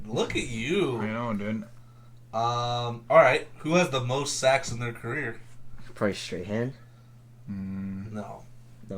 you. I know, dude. All right. Who has the most sacks in their career? Probably Strahan. No.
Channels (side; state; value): both; identical; correlation 1.00